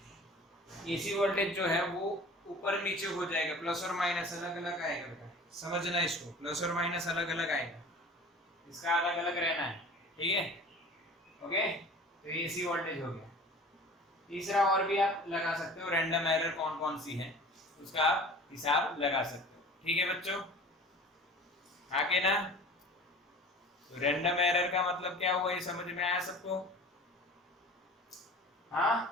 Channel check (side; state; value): both; normal; correlation 0.42